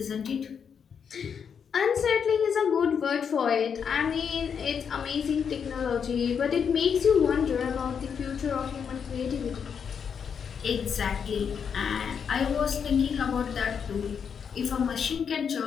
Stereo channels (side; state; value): right; quieter; 7.0 dB